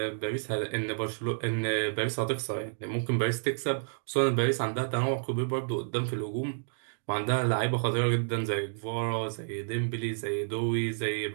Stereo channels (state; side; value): silent; left; digital silence